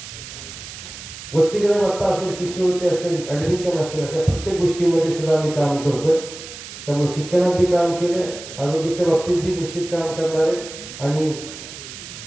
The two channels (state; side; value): noise; right; hiss, 13 dB below the sound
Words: वसतिगृह भत्ता असेल, शिष्यवृत्ती असेल, ऍडमिशन असेल, अशा प्रत्येक गोष्टीमध्ये सुद्धा आम्ही काम करतोय. त्यामुळे शिक्षणात बी काम केलं, आरोग्याच्या बाबतीत बी निश्चित काम करणार आहे आणि